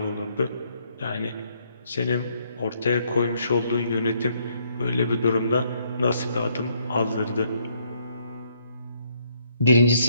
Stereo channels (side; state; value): both; inverted; correlation -0.71